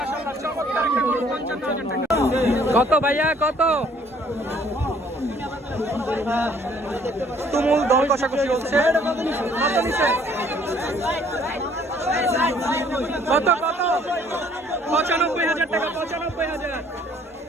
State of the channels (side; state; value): both; normal; correlation 0.60